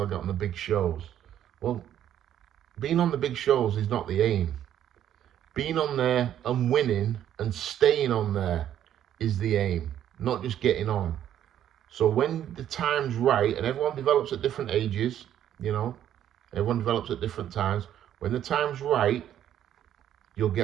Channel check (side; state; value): left; quieter; 10.8 dB